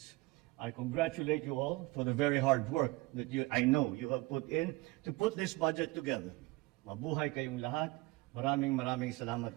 I congratulate you all for the very hard work that I know you have put in to put this budget together. Mabuhay kayong lahat. Maraming salamat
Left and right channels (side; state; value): left; quieter; 22.0 dB